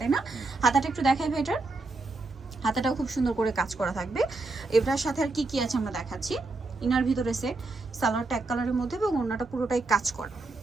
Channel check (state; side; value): quieter; left; 3.3 dB